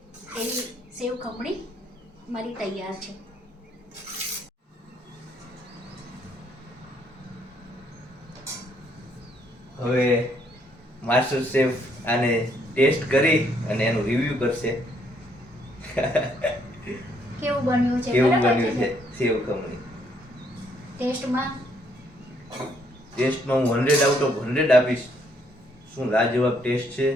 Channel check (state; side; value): normal; both; correlation 0.69